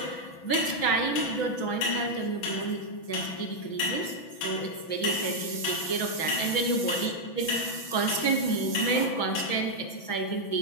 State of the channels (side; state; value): right; late; 6.1 ms